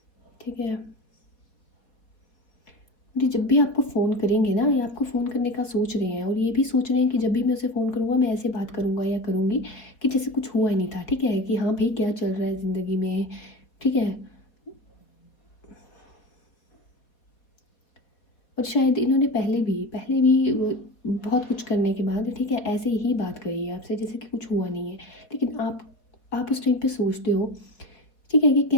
ठीक है। जी, जब भी आपको फ़ोन करेंगे ना, या आपको फ़ोन करने का सोच रहे हैं और ये भी सोच रहे हैं कि जब भी मैं उसे फ़ोन करूँगा मैं ऐसे बात करूँगा या करूँगी कि जैसे कुछ हुआ ही नहीं था, ठीक है? कि हाँ भाई, क्या चल रहा है ज़िंदगी में, ठीक है? और शायद इन्होंने पहले भी बहुत कुछ करने के बाद, ठीक है, ऐसे ही बात करी है आपसे जैसे कि कुछ हुआ नहीं है। लेकिन आप उस टाइम पे सोचते हो, ठीक है, ये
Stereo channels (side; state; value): right; late; 4.1 ms